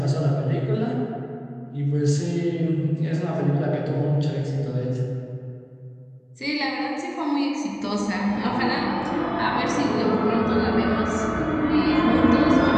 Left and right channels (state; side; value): identical; both; correlation 1.00